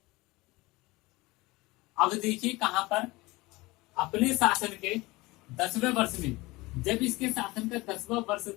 अब देखिए कहां पर, अपने शासन के 10वें वर्ष में, जब इसके शासन का 10वां वर्ष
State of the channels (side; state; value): right; quieter; 21.8 dB